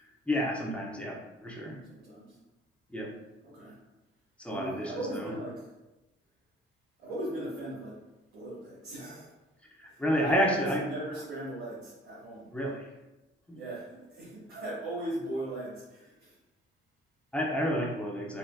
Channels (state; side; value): normal; both; correlation 0.54